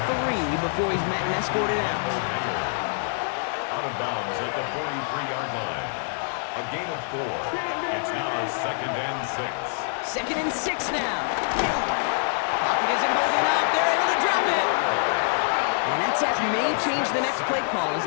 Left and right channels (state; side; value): silent; right; 61 dB below the other